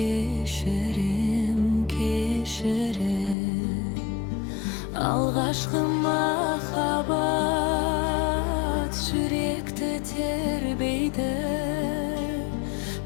кешірем. Алғашқы махаббат жүректі тербейді,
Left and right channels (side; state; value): right; drops out; at 3.4 s